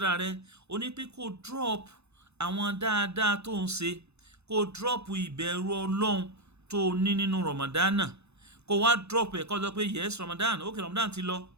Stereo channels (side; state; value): left; late; 0.80 ms